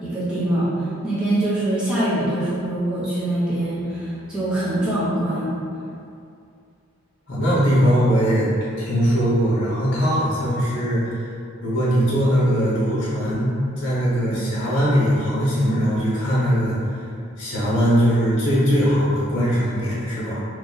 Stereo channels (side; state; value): both; normal; correlation 0.73